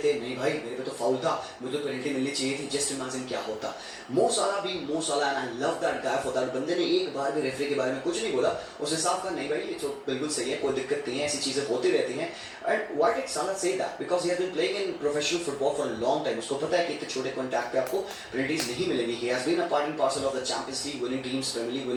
नहीं भाई मेरे पे तो फाउल था, मुझे तो पेनल्टी मिलनी चाहिए थी, जस्ट इमेजिन क्या होता. मो सलाह भी मो सलाह, and I love that guy for that. बंदे ने एक बार भी रेफरी के बारे में कुछ नहीं बोला, उसने साफ कहा नहीं भाई ये तो बिल्कुल सही है, कोई दिक्कत नहीं है, ऐसी चीजें होती रहती हैं. And why did Salah say that? Because he has been playing in professional football for a long time. उसको पता है कि इतने छोटे कॉन्टैक्ट पे आपको पेनल्टीज नहीं मिलेंगी. He has been a part and parcel of the Champions League winning teams, Premier League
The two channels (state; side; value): identical; both; correlation 1.00